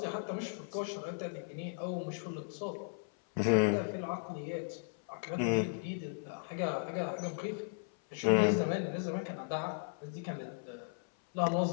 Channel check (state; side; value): silent; right; 54 dB below the other